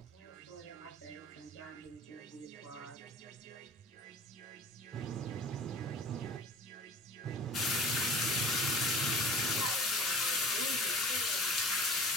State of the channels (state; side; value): normal; both; correlation 0.43